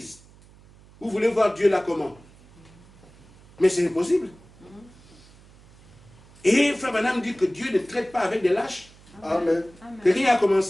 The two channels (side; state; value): right; noise; hum, 25 dB below the sound